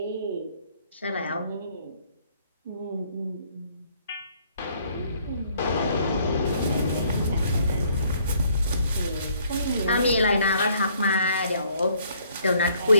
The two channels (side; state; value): both; inverted; correlation -0.64